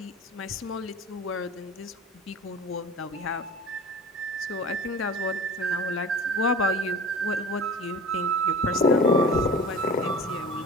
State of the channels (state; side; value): normal; both; correlation 0.38